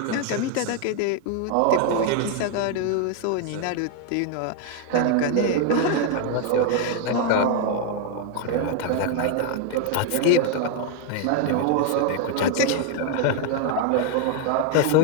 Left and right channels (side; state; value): both; different; correlation 0.01